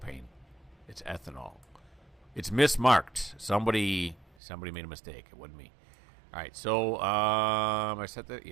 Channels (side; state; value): left; drops out; at 4.2 s